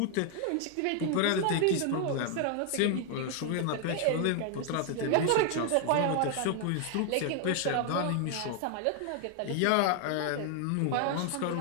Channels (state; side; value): different; both; correlation 0.00